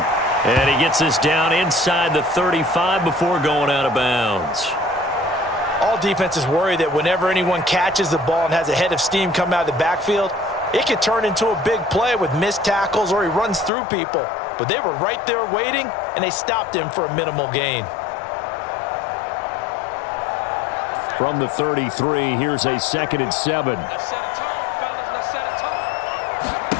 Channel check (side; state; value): right; drops out; at 13.7 s